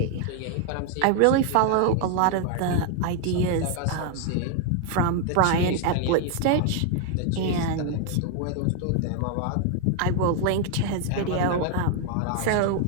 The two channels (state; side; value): different; both; correlation 0.01